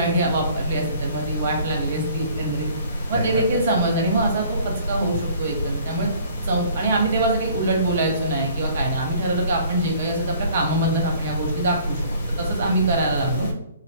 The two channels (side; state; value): both; inverted; correlation -0.55